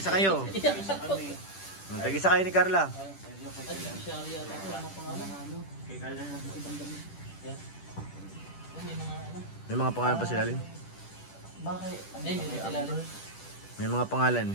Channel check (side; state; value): right; late; 10 ms